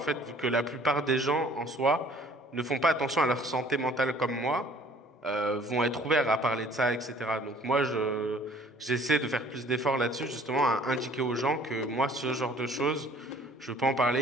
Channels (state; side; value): normal; both; correlation 0.54